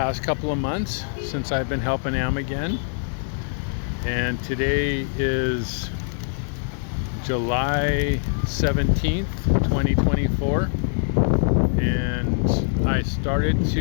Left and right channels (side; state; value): right; silent; digital silence